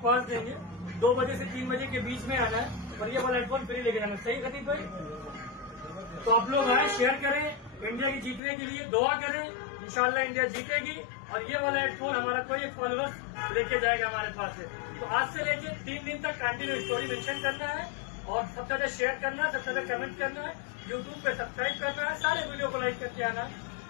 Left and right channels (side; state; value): right; drops out; at 8.4 s